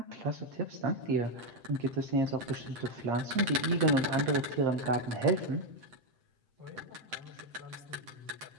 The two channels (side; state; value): left; late; 8.3 ms